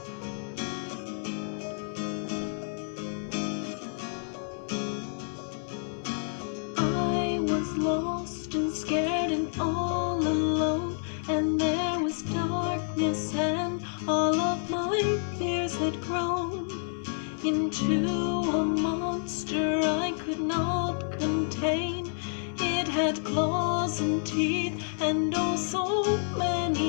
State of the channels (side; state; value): right; silent; 57 dB below the other